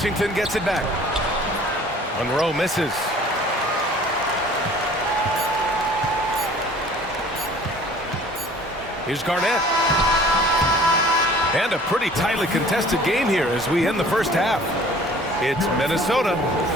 gets it back. Monroe misses. Here's Garnett. And a pretty tightly contested game here as we end the first half. It's Minnesota.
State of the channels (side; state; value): both; normal; correlation 0.50